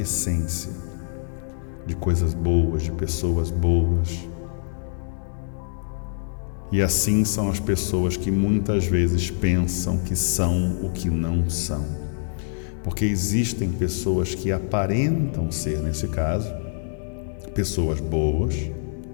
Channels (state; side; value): silent; right; digital silence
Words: de coisas boas, de pessoas boas. E assim são as pessoas que muitas vezes pensam que são o que não são. Porque existem pessoas que aparentam ser, nesse caso, pessoas boas,